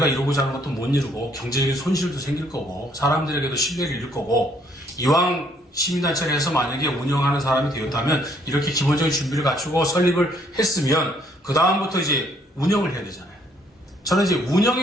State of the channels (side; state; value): both; normal; correlation 0.66